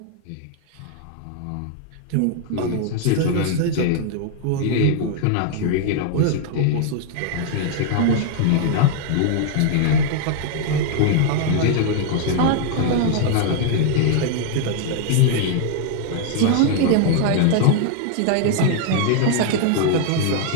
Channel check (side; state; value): both; different; correlation 0.00